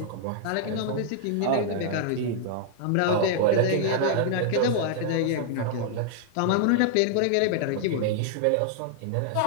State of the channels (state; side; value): different; both; correlation -0.01